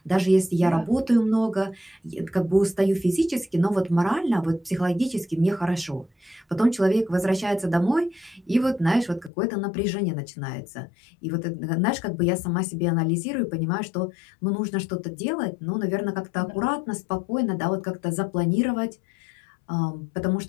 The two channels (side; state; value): right; drops out; at 9.3 s